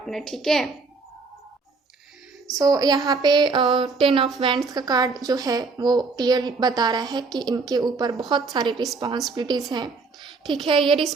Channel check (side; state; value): left; quieter; 4.2 dB